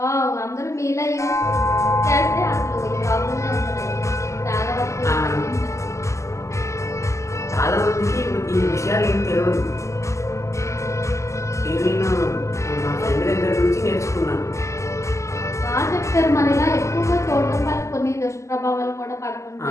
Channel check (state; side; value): late; right; 0.14 ms